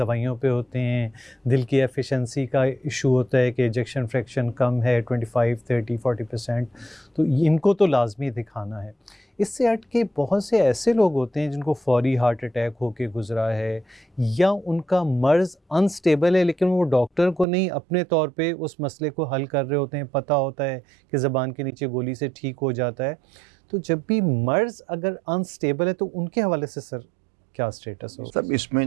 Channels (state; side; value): drops out; left; at 17.4 s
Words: پہ ہوتے ہیں، دل کی ایفیشنسی کا ایشو ہوتا ہے کہ ایجیکشن فریکشن کم ہے 25 30 40%، تو ان کو تو لازمی دکھانا ہے۔ اس سے ہٹ کے بہت سے ایسے لوگ ہوتے ہیں جن کو فوری ہارٹ اٹیک ہو کے گزرا ہے، یا ان کا مرض انسٹیبل ہے لیکن وہ ڈاکٹر کو نہیں، اپنے طور پہ اس مسئلے کو حل کر رہے ہوتے ہیں، پتہ ہوتا ہے کہ زبان کے نیچے گولی سے ٹھیک ہو جاتا ہے۔ تو جب بھی مرض اگر انسٹیبل ہے تو ان کے حوالے سے سر کیا سٹیٹس ہو؟ سب اس میں